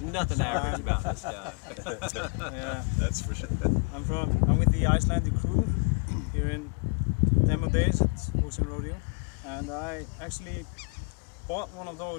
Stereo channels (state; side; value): quieter; right; 34.2 dB